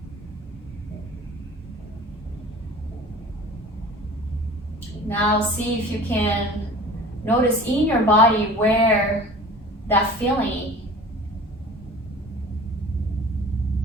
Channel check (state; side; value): normal; both; correlation 0.42